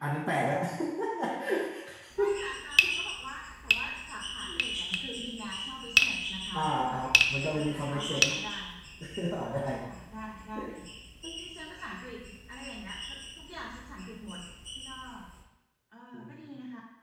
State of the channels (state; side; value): identical; both; correlation 1.00